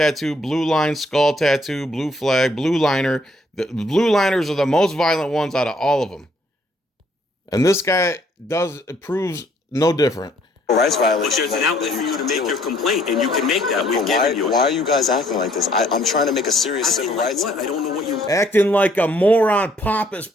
blue line, skull tattoo, blue flag, blue liner. The blue liners are the most violent ones out of all of them. And this guy proves no different. Rights violation. But there's an outlet for you to make your complaint, and you can make that. We've given you it. Why are you guys acting like this? I'm trying to make a serious civil rights. What? I don't know what you... Acting like a moron, pompous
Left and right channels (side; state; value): both; normal; correlation 0.65